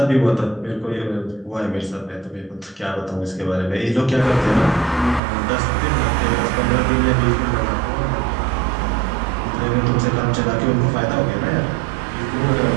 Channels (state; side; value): drops out; left; at 5.2 s